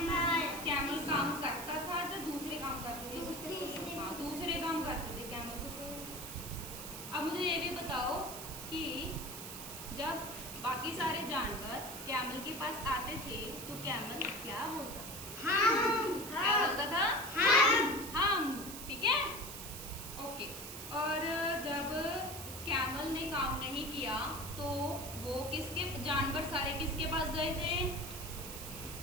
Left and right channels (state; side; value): noise; right; hiss, 9 dB below the sound